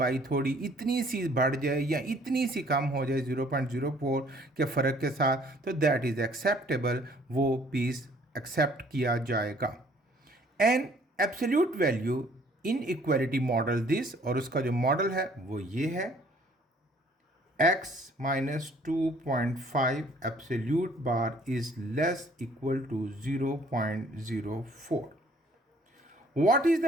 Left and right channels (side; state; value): both; normal; correlation 0.59